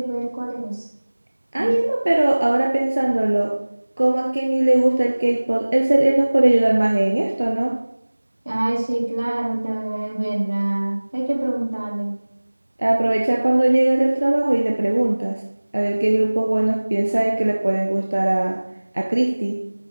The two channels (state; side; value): inverted; both; correlation -1.00